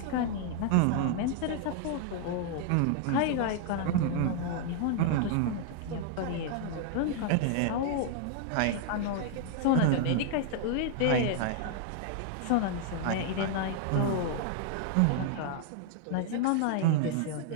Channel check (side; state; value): both; different; correlation 0.00